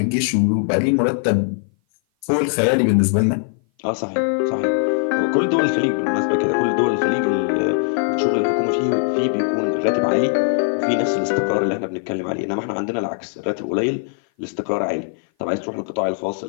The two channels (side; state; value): right; silent; 57 dB below the other